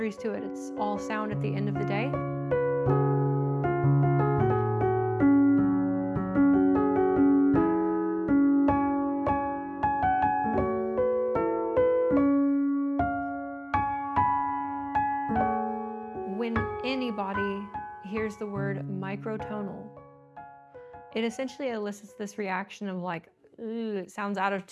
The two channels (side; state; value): both; identical; correlation 1.00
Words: to it. It's all sound at the end of the day. When anybody hears the word microtonal, it essentially elicits this reaction of like, ooh, it sounds out of